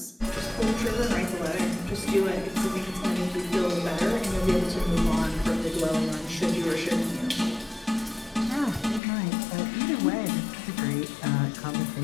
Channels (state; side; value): drops out; right; at 9.0 s